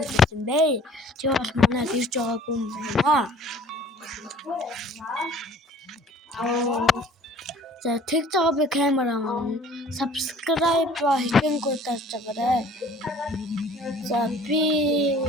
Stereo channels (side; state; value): both; normal; correlation 0.51